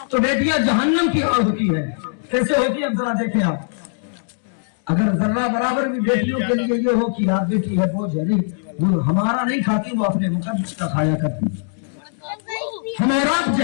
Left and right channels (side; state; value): right; silent; digital silence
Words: तो बेटियां जहन्नम की आग होती है। कैसे होती है, अब जरा देखें आप। अगर जर्रा बराबर भी बेटियों के लिए ये हो कि यार बेटी है बोझ है, नहीं, वो हमारा नहीं खाती, वो अपने मुकद्दस का खाया करती। हम और आप